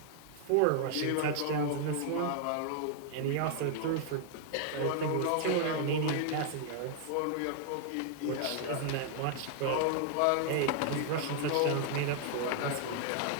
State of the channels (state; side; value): different; both; correlation 0.00